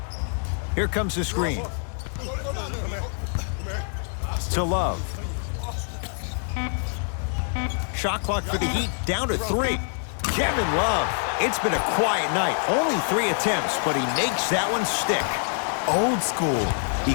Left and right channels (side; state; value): right; silent; 56 dB below the other